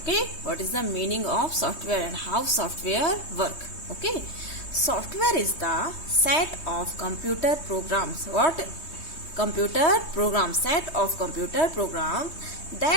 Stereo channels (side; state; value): right; late; 3.2 ms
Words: what is the meaning of software and how software work? Okay, software is the set of computer programs. What? Computer programs, set of computer programs